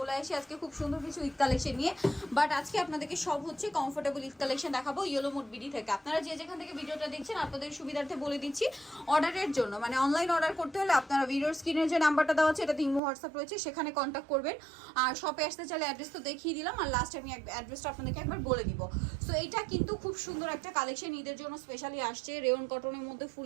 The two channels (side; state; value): left; drops out; at 13.0 s